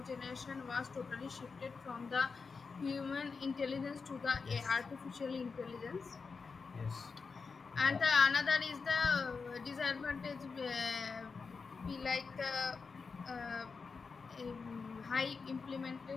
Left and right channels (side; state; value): right; quieter; 4.9 dB